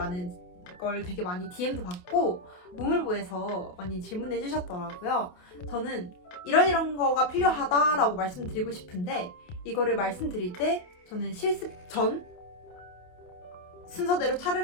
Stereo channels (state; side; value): late; right; 28 ms